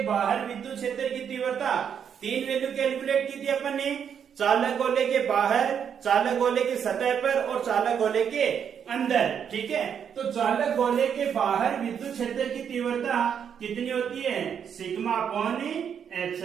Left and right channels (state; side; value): quieter; left; 7.9 dB